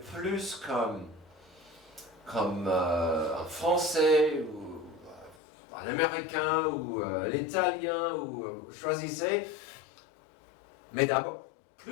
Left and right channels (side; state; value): right; drops out; at 5.4 s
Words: comme un Français ou un Américain ou un Italien ou choisissez. Mais d'abord,